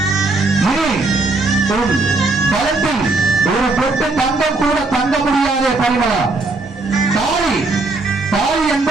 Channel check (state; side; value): quieter; left; 3.4 dB